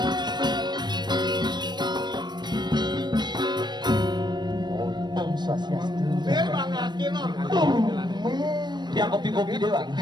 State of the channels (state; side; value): late; left; 0.21 ms